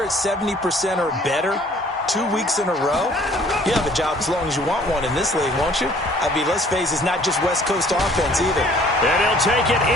at 70% or better 2 weeks in a row, you have a job as long as you want one in this league, won't you? I mean, let's face it, it's not just West Coast offense either. And he'll take it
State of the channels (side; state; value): both; normal; correlation 0.56